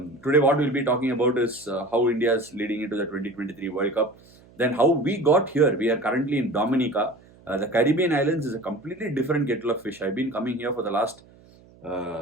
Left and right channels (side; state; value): right; noise; hum, 26 dB below the sound